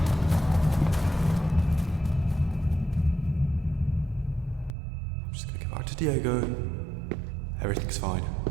I'm just gonna get back to Diego. Everything's fine.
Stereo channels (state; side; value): drops out; left; at 4.8 s